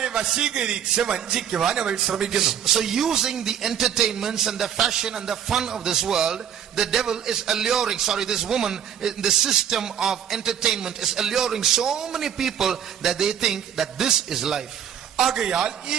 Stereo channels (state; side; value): quieter; left; 9.1 dB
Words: വശീകരിച്ച് വഞ്ചിക്കുവാൻ അവൾ ശ്രമിക്കുന്നു. So using the entertainments and the fashion and the fun of this world, the devil is alluring, this woman in the system of entertainment is alluring so many people that they think that this is life. ആകയാൽ ഈ